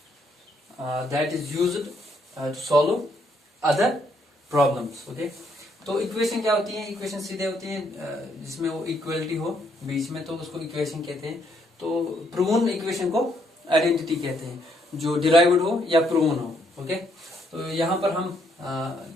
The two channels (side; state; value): both; normal; correlation 0.72